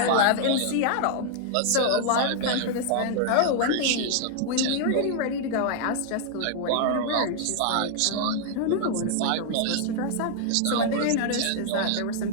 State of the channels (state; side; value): different; both; correlation -0.01